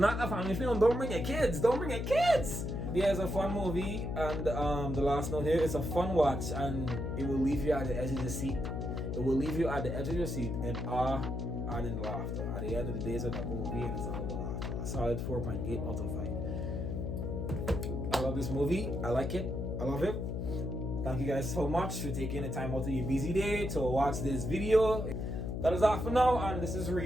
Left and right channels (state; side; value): noise; left; hum, 3 dB below the sound